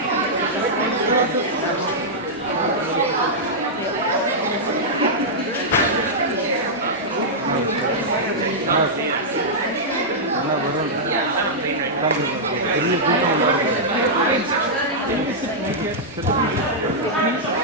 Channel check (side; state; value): both; normal; correlation -0.09